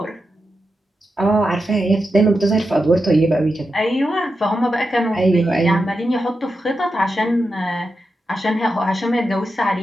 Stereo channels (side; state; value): both; normal; correlation 0.88